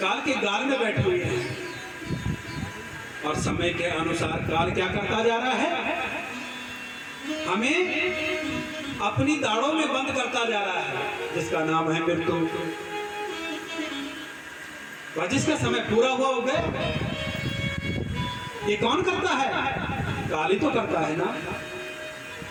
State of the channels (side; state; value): both; identical; correlation 1.00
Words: के गाल में बैठे हुए हैं और समय के अनुसार काल क्या करता जा रहा है? हमें अपनी दाढ़ों में बंद करता जा रहा है, जिसका नाम है मृत्यु। और जिसका समय पूरा हुआ हो गया, ये कौन करता है? काल ही तो करता है ना।